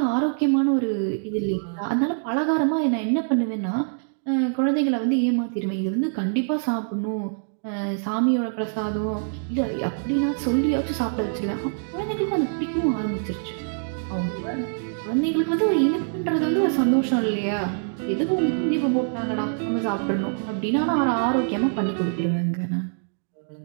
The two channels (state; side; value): silent; left; digital silence